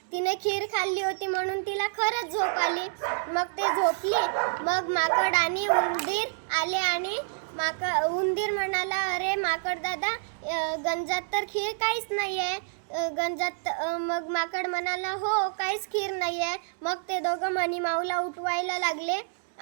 तिने खीर खाल्ली होती म्हणून तिला खरंच झोप आली. मग ते झोपली. मग माकड आणि उंदीर आले आणि उंदीर म्हणाला, अरे माकड दादा, गंजात तर खीर काहीच नाही आहे गंजात. मग माकड म्हणाला, हो, काहीच खीर नाही आहे. मग ते दोघं मनीमाऊला उठवायला लागले.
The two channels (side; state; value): left; silent; digital silence